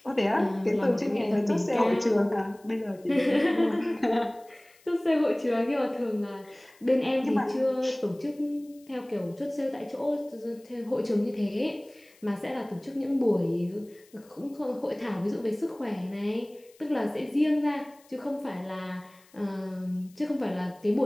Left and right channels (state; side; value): noise; left; hiss, 29 dB below the sound